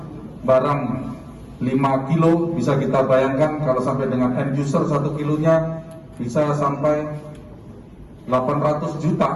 barang 5 kilo bisa kita bayangkan kalau sampai dengan end user 1 kilonya bisa sampai 800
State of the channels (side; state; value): both; identical; correlation 1.00